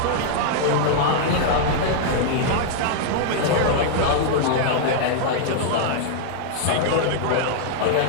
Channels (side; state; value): both; different; correlation -0.01